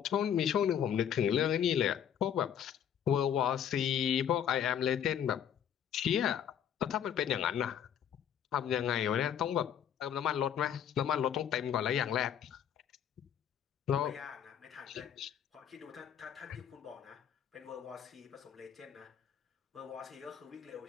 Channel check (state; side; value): quieter; right; 9.1 dB